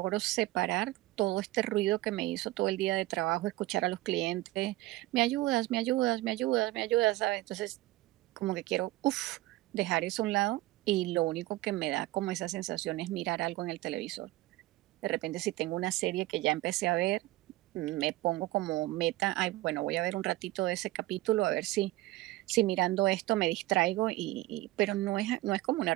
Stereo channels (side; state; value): left; quieter; 18.0 dB